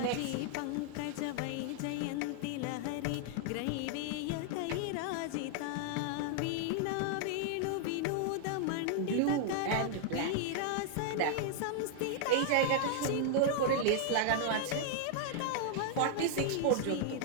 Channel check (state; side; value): different; both; correlation 0.00